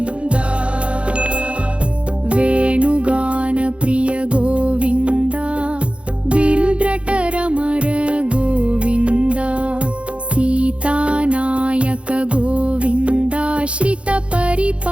वेणुगान प्रिय गोविन्द बिल्ड्रटरमर गोविन्द सीतानायक गोविन्द श्रित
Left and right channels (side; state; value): left; late; 0.060 ms